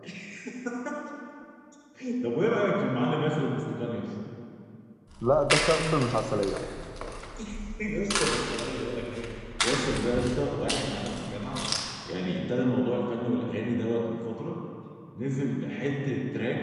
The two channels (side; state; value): both; identical; correlation 1.00